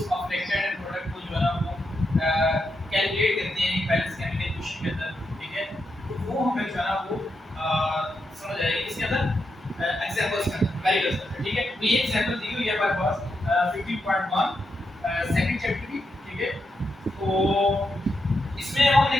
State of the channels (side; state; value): both; normal; correlation 0.84